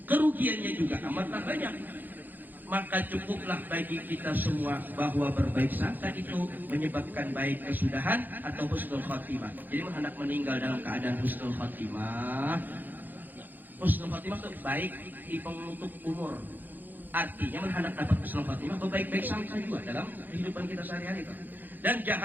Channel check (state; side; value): late; left; 0.087 ms